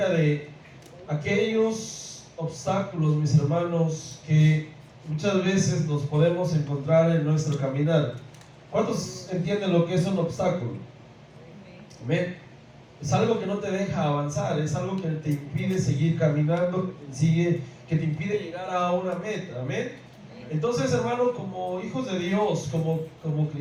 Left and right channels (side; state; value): both; identical; correlation 1.00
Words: de aquellos obstáculos, mis hermanos, que muchas veces nos podemos encontrar en nuestro caminar. ¿Cuántos entienden lo que es un obstáculo? Amén. Es algo que no te deja avanzar, es algo que te impide seguir caminando, que te impide llegar a una meta. Amén. Entonces, hermano, como hijos de Dios, como